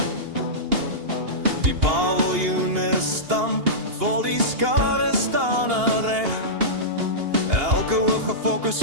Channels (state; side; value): late; left; 2.8 ms